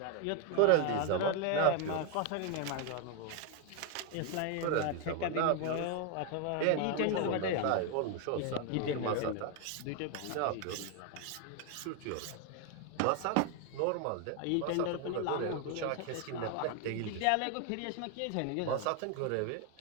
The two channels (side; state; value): both; different; correlation 0.01